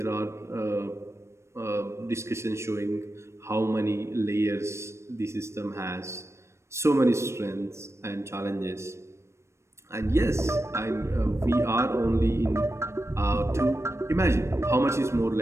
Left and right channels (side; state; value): left; late; 0.13 ms